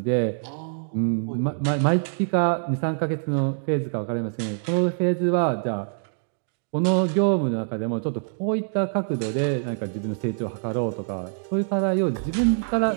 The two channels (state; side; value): silent; left; digital silence